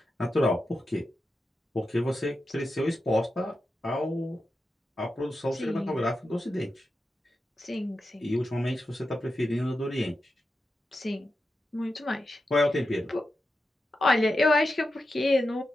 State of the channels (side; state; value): both; normal; correlation 0.89